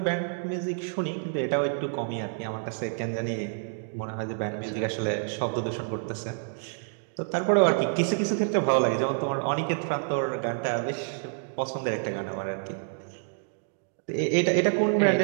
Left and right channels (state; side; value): silent; left; digital silence